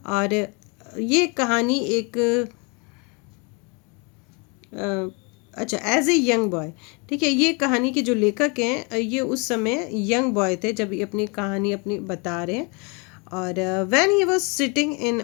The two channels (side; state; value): right; quieter; 31.6 dB